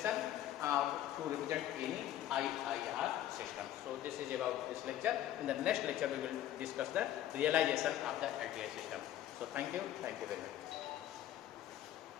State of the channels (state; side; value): quieter; right; 12.4 dB